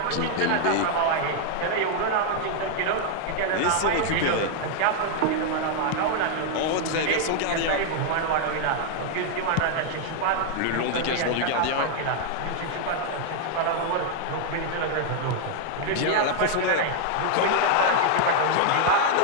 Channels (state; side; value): different; both; correlation 0.00